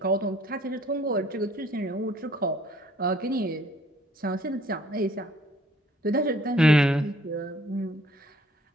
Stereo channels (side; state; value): both; normal; correlation 0.59